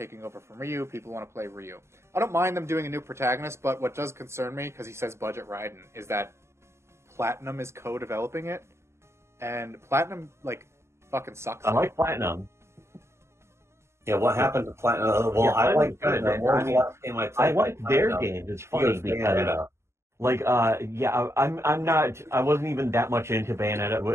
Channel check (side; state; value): left; late; 0.13 ms